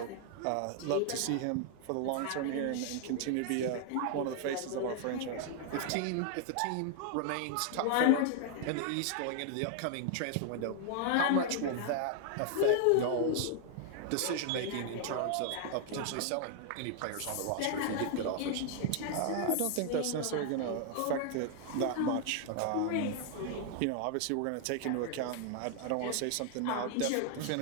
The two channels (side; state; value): both; different; correlation 0.00